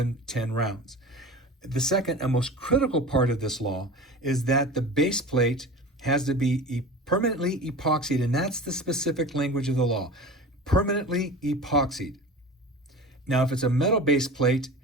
10 rounds. The second and most critical part of this law is that the base plate has to be permanently epoxied, and that's the specific language of the law, permanently epoxied. Now, if it's a metal base plate,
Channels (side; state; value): both; normal; correlation 0.35